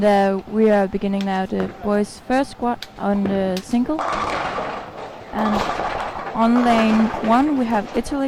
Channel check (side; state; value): both; identical; correlation 1.00